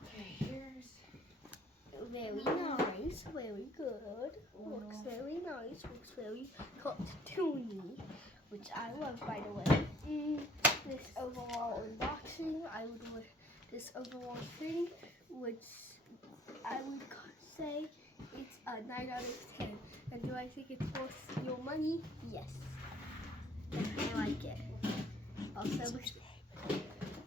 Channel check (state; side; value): normal; both; correlation 0.59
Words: Okay, here's very nice, very good. Looks very nice, looks very cartoony, which I love, by the way. This overall unboxing, I would this overall thing, which I would say it's a 9 out of 10. And do I think it's worth your money? Yes. I like it. Also,